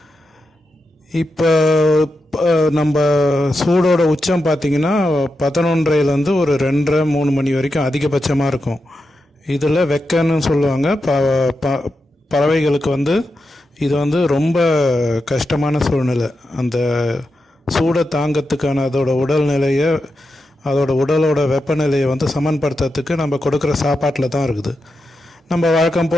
இப்போ நம்ம சூடோட உச்சம் பார்த்திங்கன்னா 11:30லேருந்து ஒரு 2:30-3 மணி வரைக்கும் அதிகபட்சமாக இருக்கும். இதில் வெக்கன்னு சொல்லுவாங்க. பறவைகளுக்கு இது ரொம்ப கஷ்டமான சூழ்நிலை. அந்த சூடை தாங்கிறதுக்கான அதோட உடல்நிலையை, அதோட உடலோட வெப்பநிலையை சமன்படுத்துறதுக்கு நம்ம கொடுக்குற சாப்பாட்டில் தான் இருக்குது. நம்ம வழக்கம்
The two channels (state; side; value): normal; both; correlation 0.88